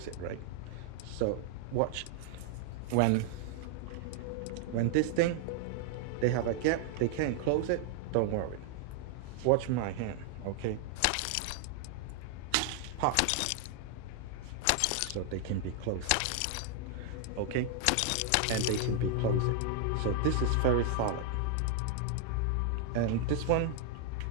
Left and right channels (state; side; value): different; both; correlation 0.00